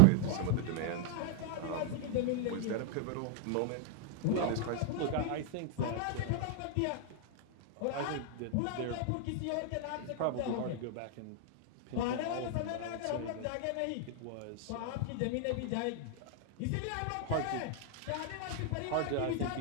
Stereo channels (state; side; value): different; both; correlation 0.00